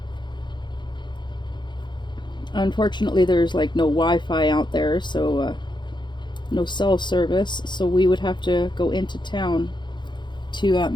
unfortunately there's like no Wi-Fi out there, so no cell service, so we would have to go into town to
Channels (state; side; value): late; right; 0.22 ms